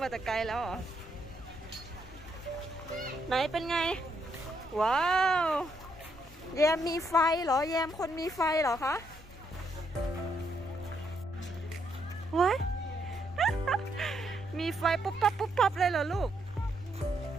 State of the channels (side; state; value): both; normal; correlation 0.75